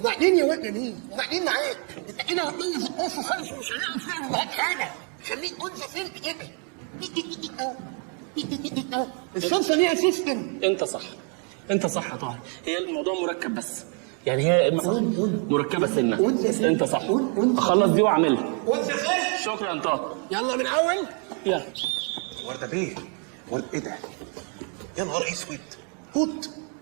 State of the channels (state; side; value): quieter; left; 39.9 dB